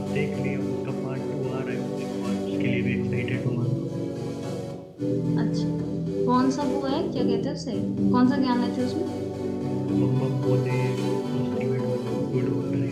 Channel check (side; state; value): both; identical; correlation 1.00